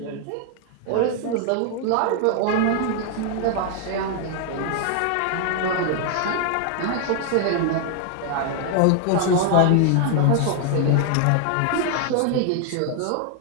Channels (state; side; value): different; both; correlation 0.00